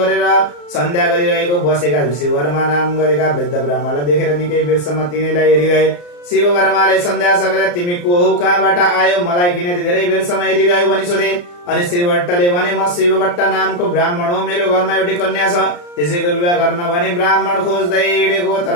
सन्ध्या गरिरहेको बसेका शिववर्मा नाम गरेका वृद्ध ब्राह्मणलाई देखेर निकै बेरसम्म तिनीलाई हेरिरहे। शिववर्माले सन्ध्या सकेर, तिमी को हौ, कहाँबाट आयो, मलाई किन धेरै बेरसम्म हेरिरह्यो भनी सोधे। अनि श्रीभट्टले भने, म शिवभट्ट नामको ब्राह्मण हो, मेरो घरमा एउटी कन्या छ, त्यसैको विवाह गर्न भने ब्राह्मण खोज्दै हिँडेको,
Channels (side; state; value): right; late; 34 ms